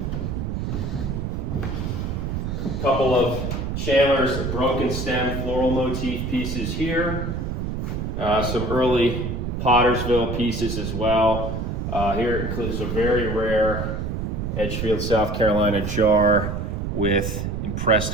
A couple of Chandler's broken stem floral motif pieces here. Some early Pottersville pieces as well. Here it includes a very rare Edgefield, South Carolina jar with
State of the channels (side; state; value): right; noise; rumble, 3 dB below the sound